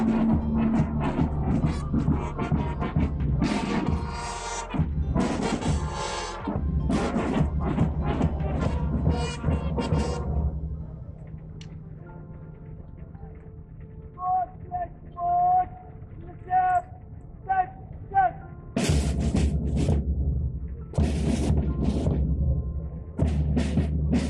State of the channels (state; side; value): identical; both; correlation 1.00